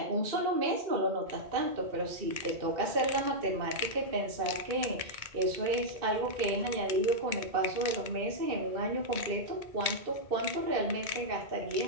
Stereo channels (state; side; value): late; left; 2.2 ms